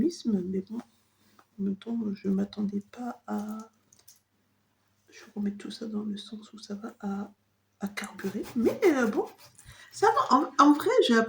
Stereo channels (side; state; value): both; identical; correlation 1.00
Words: Mais bon, en même temps, je ne m'attendais pas à... Je vais remettre tout ça dans le sens où ça va à carburer. Mais bon, ça va. En vrai, j'ai